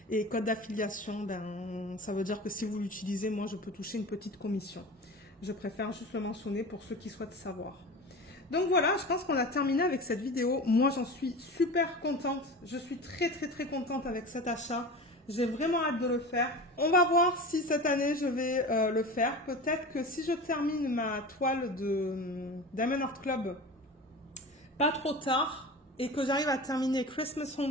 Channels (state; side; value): normal; both; correlation 0.32